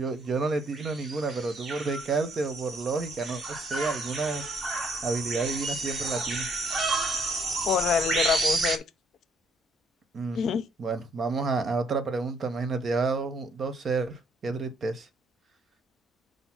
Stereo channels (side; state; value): both; normal; correlation 0.68